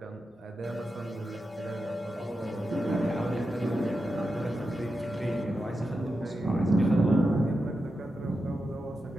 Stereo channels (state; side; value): normal; both; correlation 0.89